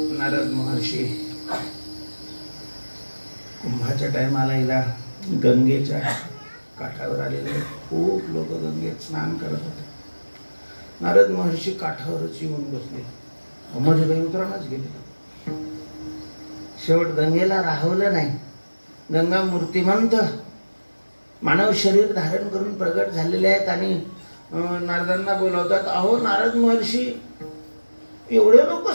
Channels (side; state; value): both; inverted; correlation -1.00